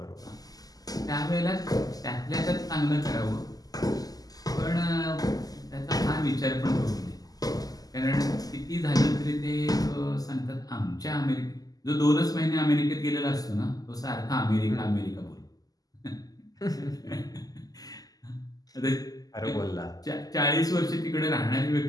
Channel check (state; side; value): late; right; 0.18 ms